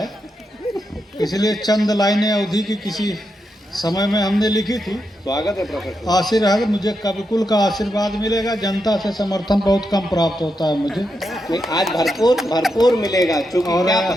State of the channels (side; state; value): both; normal; correlation 0.85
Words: इसलिए चंद लाइनें अवधि की किसी समय में हमने लिखी थी। स्वागत है प्रोफेसर। आशीर्वाद मुझे कविकुल का आशीर्वाद मिलेगा, जनता से समर्थन बहुत कम प्राप्त होता है मुझे। नहीं, आज भरपूर मिलेगा, क्योंकि क्या